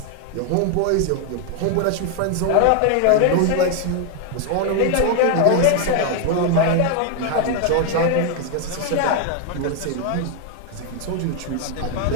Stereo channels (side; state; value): both; different; correlation 0.00